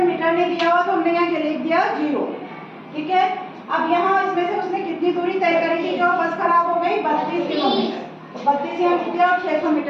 मीटर ने दिया हुआ तो हमने यहाँ लिख दिया 0। ठीक है, अब यहाँ इसमें से उसने कितनी दूरी तय करी थी, जो बस खराब हो गई, 32 किलोमीटर। तो 32 यहाँ लिख दिया और 600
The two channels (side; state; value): both; identical; correlation 1.00